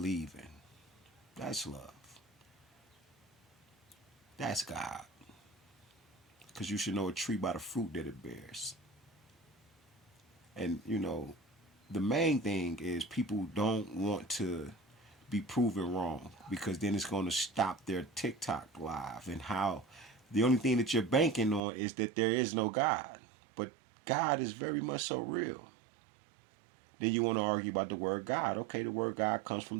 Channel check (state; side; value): drops out; left; at 21.6 s